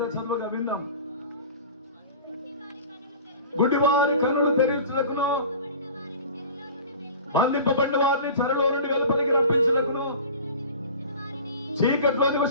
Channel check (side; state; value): both; inverted; correlation -0.39